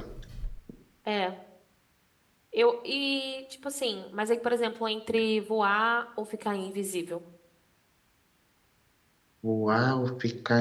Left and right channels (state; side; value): identical; both; correlation 1.00